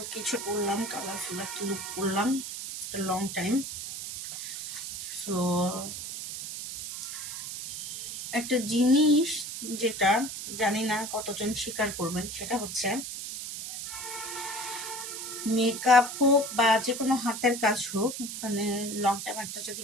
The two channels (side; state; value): right; noise; hiss, 7 dB below the sound